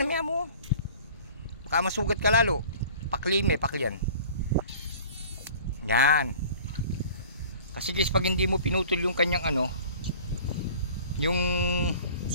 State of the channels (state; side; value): inverted; both; correlation -0.46